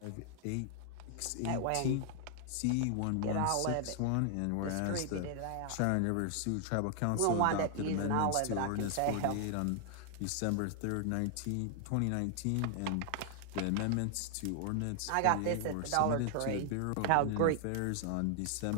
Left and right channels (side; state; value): both; different; correlation 0.00